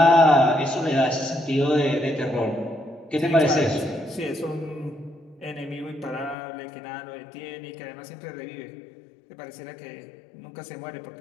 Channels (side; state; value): right; drops out; at 6.4 s